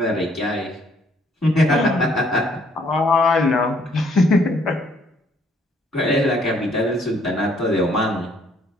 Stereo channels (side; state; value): both; normal; correlation 0.65